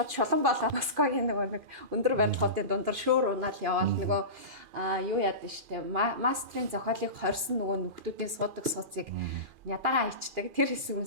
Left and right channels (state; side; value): late; left; 2.4 ms